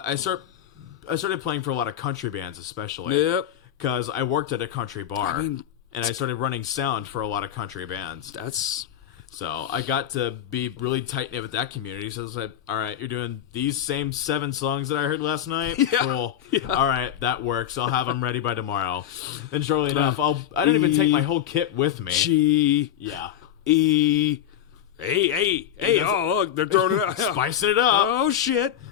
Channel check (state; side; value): quieter; right; 10.6 dB